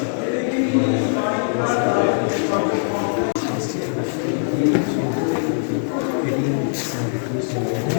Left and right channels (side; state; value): right; silent; digital silence